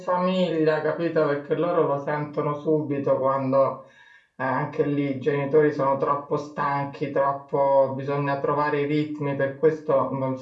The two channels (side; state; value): both; identical; correlation 1.00